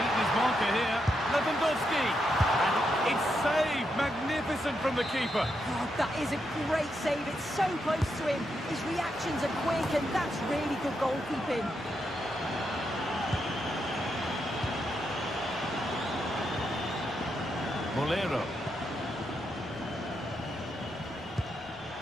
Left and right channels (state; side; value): normal; both; correlation 0.82